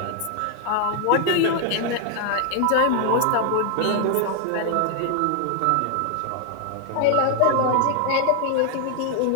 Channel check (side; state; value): both; different; correlation 0.00